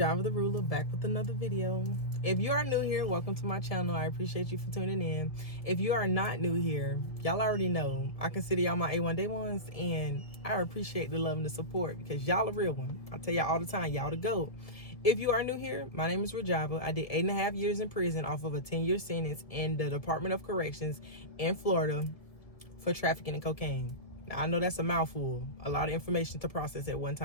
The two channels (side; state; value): right; late; 1.7 ms